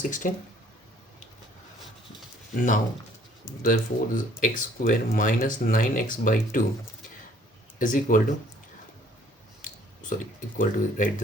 Now therefore this x square minus 9x by 2 is equal to, sorry, equal to, right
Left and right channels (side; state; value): both; normal; correlation 0.59